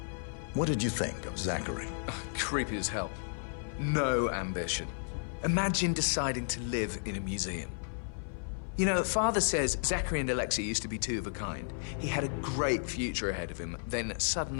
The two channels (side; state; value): right; silent; 56 dB below the other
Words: What did you think of Zachary? Creepy as hell. No ambition. Imagine deciding to live in a museum. You know, Father says Zachary and Alexia used to be two of a kind. He had a great future ahead of him, then